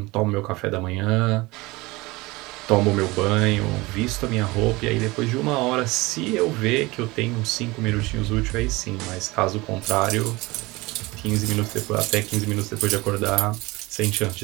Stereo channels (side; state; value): left; quieter; 22.1 dB